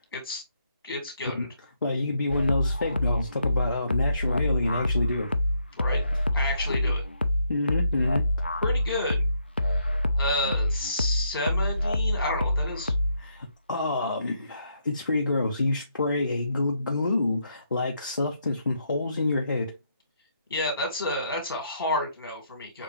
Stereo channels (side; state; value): both; inverted; correlation -0.76